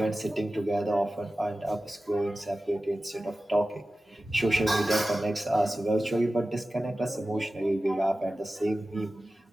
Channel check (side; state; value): both; normal; correlation 0.95